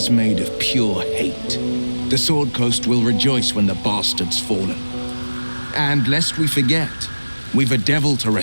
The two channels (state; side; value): inverted; both; correlation -1.00